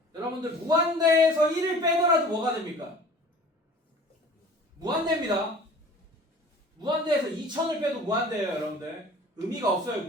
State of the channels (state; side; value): normal; both; correlation 0.45